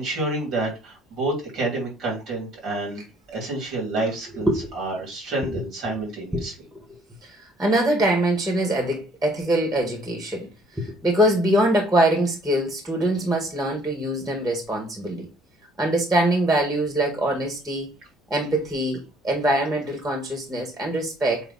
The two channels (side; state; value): both; normal; correlation 0.60